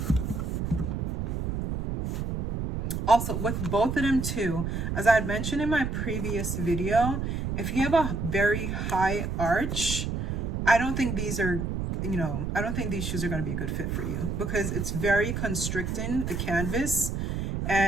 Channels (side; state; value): right; noise; rumble, 2 dB below the sound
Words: Also, with both of them too, as I had mentioned in my previous video, if you have a very high arch, I don't think these are, you know, I don't think these shoes are going to be a good fit for you, because it's very constricting, the canvas.